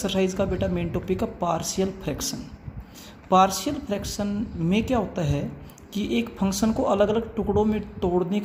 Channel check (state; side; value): identical; both; correlation 1.00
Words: का बेटा मेन टॉपिक है पार्शियल फ्रैक्शन। पार्शियल फ्रैक्शन में क्या होता है कि एक फंक्शन को अलग अलग टुकड़ों में तोड़ने